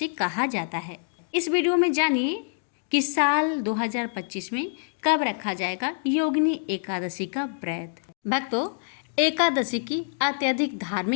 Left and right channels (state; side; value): silent; right; digital silence